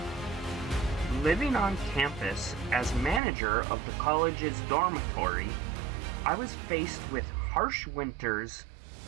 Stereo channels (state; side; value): drops out; left; at 3.2 s